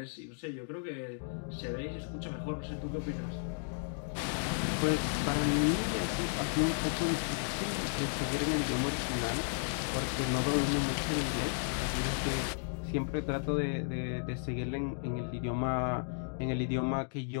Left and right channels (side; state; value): right; silent; digital silence